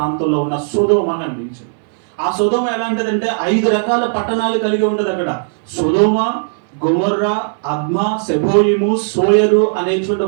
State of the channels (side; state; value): left; silent; 62 dB below the other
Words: ఉన్న సొదొమ కనిపించింది. ఆ సొదొమ ఎలాంటిదంటే 5 రకాల పట్టణాలు కలిగి ఉంటుంది అక్కడ. సొదొమ, గొమొర్రా, అద్మా, సెబోయిము, సోయరు అనేటువంటి